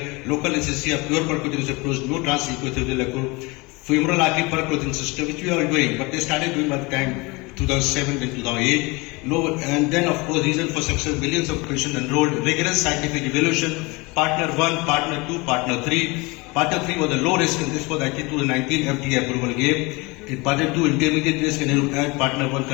Local anesthesia, pure percutaneous approach, no transequithelial femoral artery percutaneous system, which we are doing. But they started doing by the time 2007 and 2008. No, and then of course reason for success, millions of patients enrolled, rigorous scientific evaluation, partner 1, partner 2, partner 3. Partner 3 was a low risk and this was actually 2019 FDA approval gave. In partner 2 intermediate risk and partner 1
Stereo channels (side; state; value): right; quieter; 25.4 dB